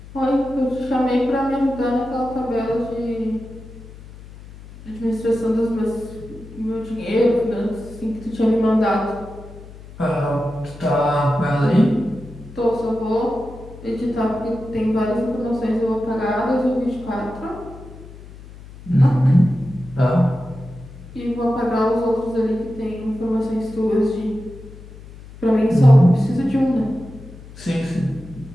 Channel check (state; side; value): noise; left; hum, 17 dB below the sound